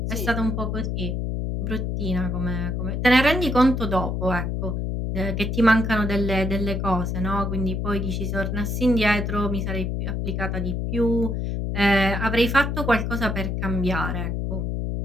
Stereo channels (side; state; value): left; noise; hum, 1 dB below the sound